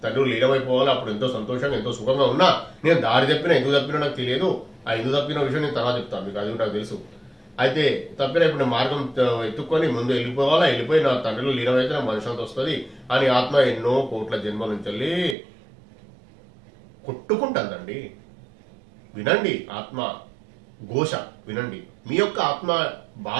తండ్రి లీనమైపోవాలి. అప్పుడు ఎంతో సంతోషంగా ఎంతో సుఖంగా ఉన్నా, నేను దారి తప్పినా ఎందుకు తప్పినా నాకు తెలియదు. ఆ ఎందుకు తప్పిన విషయం నేను తర్వాత చెప్తాను మీకు, అది నాకు తెలుసు. అయితే తప్పిన ఇప్పుడు మార్గం ఎత్తుక్కొని ముందు వెళ్ళిపోయి నా తండ్రిలో లీనమైతే నాకు మనశ్శాంతి వస్తుంది అని ఆత్మ ఎన్నో కోట్ల జన్మల నుంచి వెళ్ళి కొట్టుకుంటుందండి. వినండి, ఆత్మ ఘోష వినండి, మీ యొక్క ఆత్మ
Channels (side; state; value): left; drops out; at 15.4 s